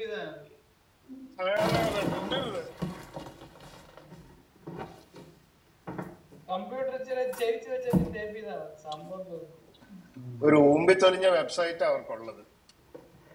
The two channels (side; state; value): both; identical; correlation 1.00